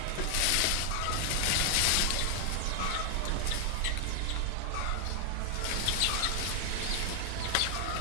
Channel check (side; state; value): both; different; correlation 0.01